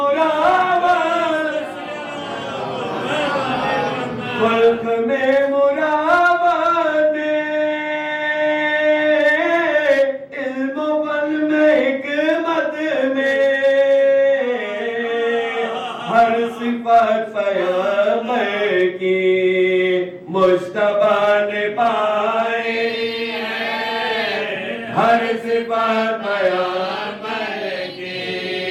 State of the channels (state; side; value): identical; both; correlation 1.00